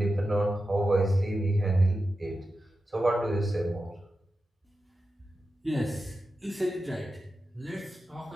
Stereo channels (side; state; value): both; normal; correlation 0.91